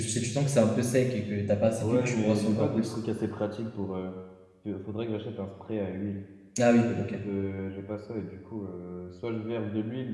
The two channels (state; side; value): identical; both; correlation 1.00